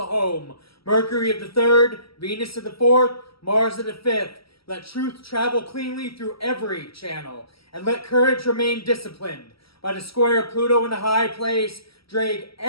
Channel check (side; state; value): right; late; 0.75 ms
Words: home, Mercury of the third, Venus of the fourth, Mars of the fifth, let truth travel cleanly through every channel, and let courage remain disciplined. By the square of Pluto in the high place, drag